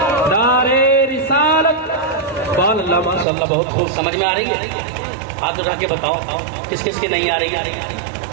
نعرے رسالت. سبحان اللہ ماشاء اللہ, بہت خوب. سمجھ میں آ رہی ہے؟ ہاتھ اٹھا کے بتاؤ کس کس کی نہیں آ رہی ہے.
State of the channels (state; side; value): drops out; left; at 3.2 s